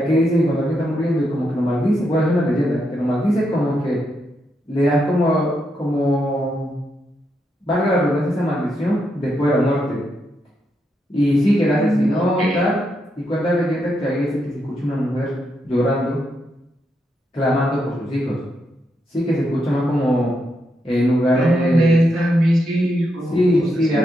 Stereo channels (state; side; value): normal; both; correlation 0.81